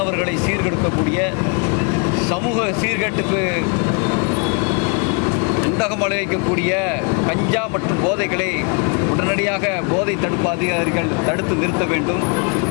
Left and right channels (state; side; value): quieter; right; 36.0 dB